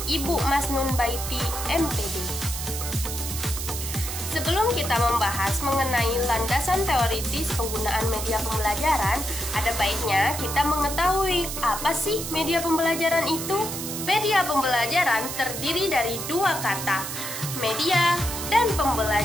Ibu Masnun Baiti MPD. Sebelum kita membahas mengenai landasan teoritis penggunaan media pembelajaran, ada baiknya kita mengetahui apa sih media pembelajaran itu? Media pembelajaran terdiri dari dua kata, media dan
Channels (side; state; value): right; noise; hiss, 6 dB below the sound